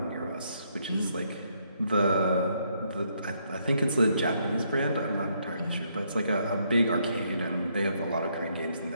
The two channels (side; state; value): both; inverted; correlation -0.73